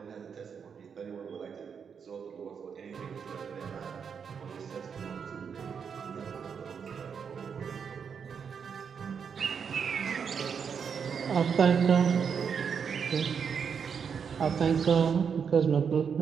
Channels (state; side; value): quieter; left; 6.7 dB